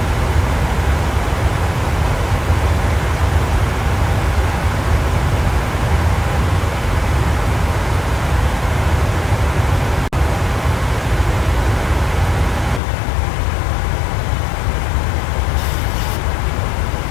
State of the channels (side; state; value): right; drops out; at 12.8 s